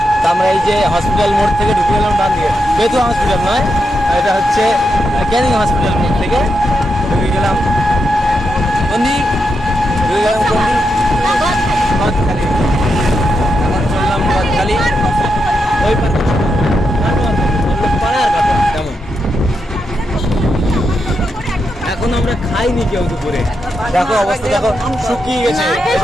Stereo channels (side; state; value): both; normal; correlation 0.84